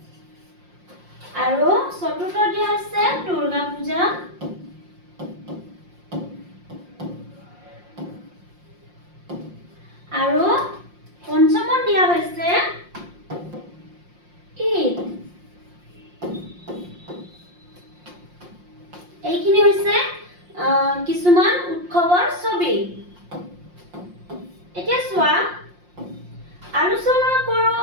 আৰু চতুৰ্থ দিয়া হৈছে দুৰ্গা পূজা। আৰু পঞ্চমত দিয়া হৈছে ঈদ। এইখিনি হৈছে কিছুমান উৎসৱৰ ছবি। এতিয়া চোৱা, আলোচনা কৰো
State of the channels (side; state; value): left; late; 5.6 ms